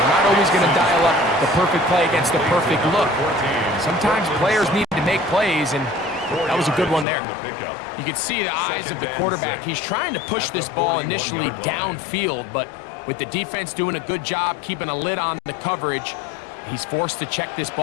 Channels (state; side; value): drops out; right; at 7.1 s